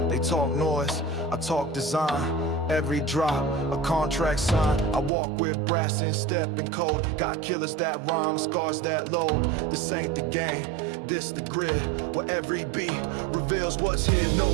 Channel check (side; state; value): left; drops out; at 5.1 s